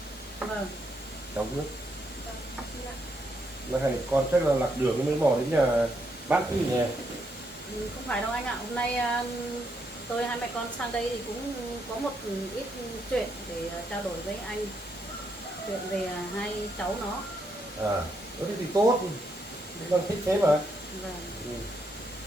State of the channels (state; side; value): normal; both; correlation 0.77